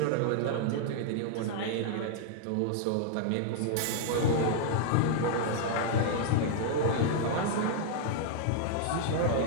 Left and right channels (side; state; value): both; different; correlation -0.01